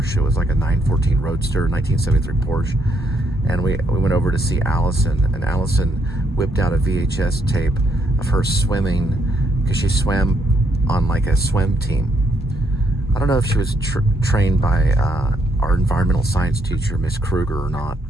It was like a 914 Roadster, 1973 Porsche. And we went over to see Allison, and Allison whipped out a VHS tape of her swimming, because she swam on like a swim team. I don't know if she was trained by our environmental science teacher, Miss Kruger, or not.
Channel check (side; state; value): both; normal; correlation 0.74